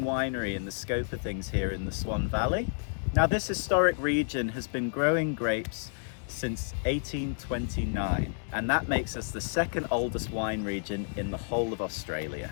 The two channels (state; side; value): silent; right; digital silence